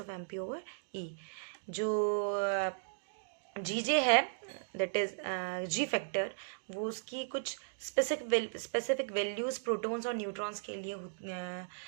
of M P over E. जो जी जे है दैट इज जी फैक्टर, वो उसकी कुछ स्पेसिफिक वैल्यूज प्रोटॉन्स और न्यूट्रॉन्स के लिए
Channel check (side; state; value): left; silent; digital silence